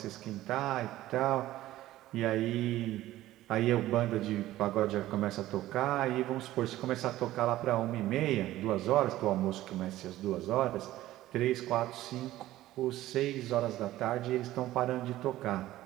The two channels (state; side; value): quieter; left; 15.2 dB